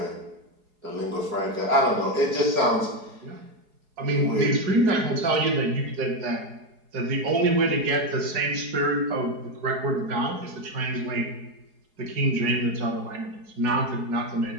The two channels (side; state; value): left; late; 4.8 ms